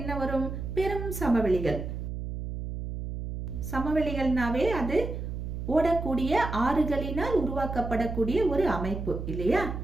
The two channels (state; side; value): noise; right; hum, 6 dB below the sound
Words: வரும்? பெரும் சமவெளிகள். சமவெளிகள்னாவே அது ஓடக்கூடிய ஆறுகளினால் உருவாக்கப்படக்கூடிய ஒரு அமைப்பு இல்லையா?